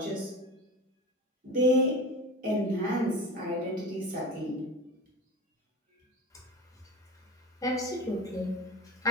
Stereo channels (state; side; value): normal; both; correlation 0.31